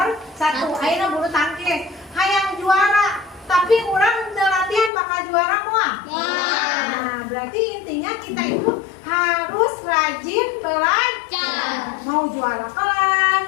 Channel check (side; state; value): right; drops out; at 4.9 s